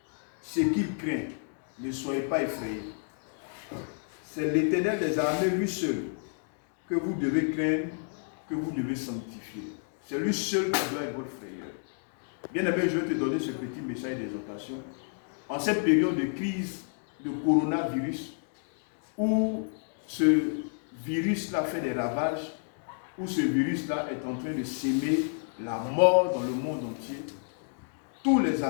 ce qu'il craint. Ne soyez pas effrayés. C'est l'Éternel des armées, lui seul, que vous devez craindre, que vous devez sanctifier. C'est lui seul qui doit être votre frayeur. Bien aimé, je vais te donner ce petit message d'exhortation. En cette période de crise de coronavirus, où ce virus-là fait des ravages, où ce virus-là est en train de s'aimer la mort dans le monde entier, tous les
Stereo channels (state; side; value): silent; right; 58 dB below the other